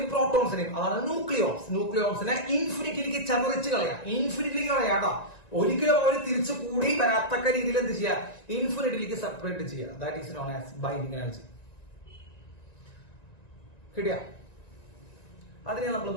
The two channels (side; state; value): right; late; 1.9 ms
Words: പ്രോട്ടോൺസിനെയും, അതാണ് ന്യൂക്ലിയോൺസിനെ ഇൻഫിനിറ്റിയിലേക്ക് ചതറിച്ച് കളയാട്ടോ. ഒരിക്കലും അവർ തിരിച്ചു കൂടി വരാത്തക്ക രീതിയിൽ എന്ത് ചെയ്യുക? ഇൻഫിനിറ്റിയിലേക്ക് സെപ്പറേറ്റ് ചെയ്യുക. That is known as binding energy. കിട്ടിയ? അതിനെ നമ്മൾ